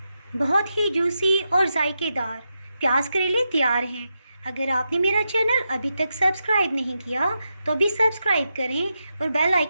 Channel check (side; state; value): both; inverted; correlation -0.87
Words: बहुत ही जूसी और जायकेदार प्याज करेले तैयार हैं। अगर आपने मेरा चैनल अभी तक सब्सक्राइब नहीं किया तो अभी सब्सक्राइब करें और बेल